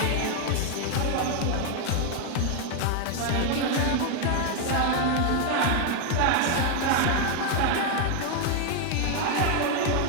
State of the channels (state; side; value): different; both; correlation 0.00